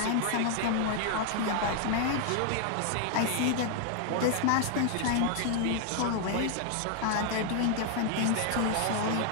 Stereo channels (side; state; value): both; different; correlation 0.00